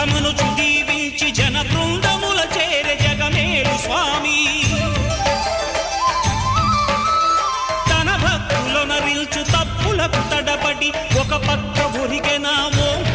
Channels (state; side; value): identical; both; correlation 1.00